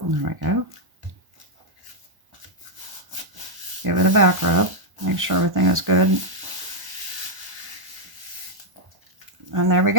we go. Give it a back rub. Make sure everything is good. And there we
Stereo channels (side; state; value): left; late; 1.1 ms